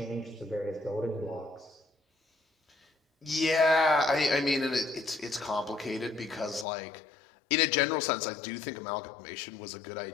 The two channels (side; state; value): right; drops out; at 6.7 s